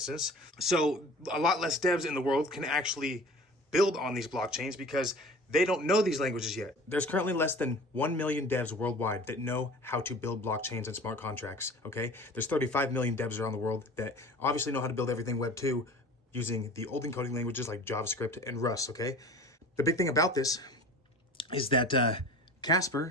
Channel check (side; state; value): both; normal; correlation 0.41